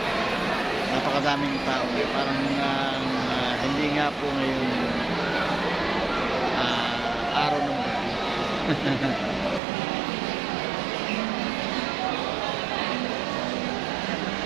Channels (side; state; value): left; drops out; at 9.6 s